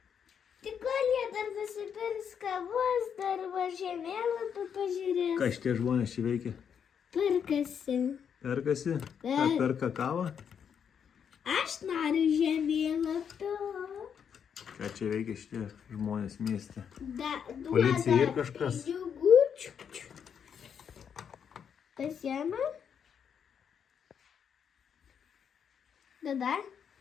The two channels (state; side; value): quieter; right; 7.6 dB